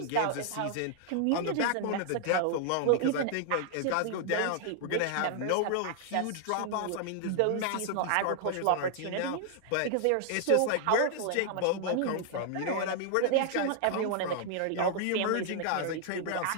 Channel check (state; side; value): different; both; correlation 0.00